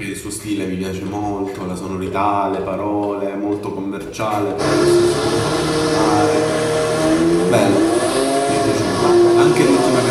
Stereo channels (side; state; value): both; identical; correlation 1.00